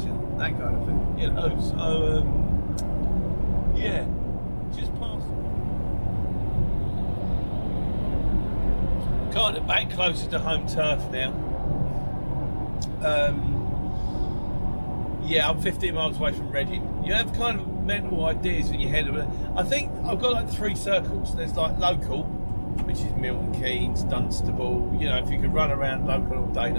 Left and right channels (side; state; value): both; inverted; correlation -1.00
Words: that kind of thing, you know. So yeah, just past. Kind of back closer to home turf now. Yeah, I'm 15 miles away from Reading. You have kind of mental ideas in your head of it. I think I've got like 3 circles. There's like local, which is Milton Keynes, Dunstable, you know, if you could run around local all day